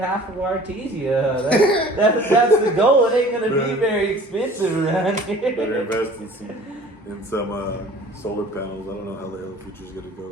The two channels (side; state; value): both; normal; correlation 0.47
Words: of Artesia. That's the goal. It ain't gonna be very expensive around here. Better invest in some solar panels. I don't know how the hell the future's gonna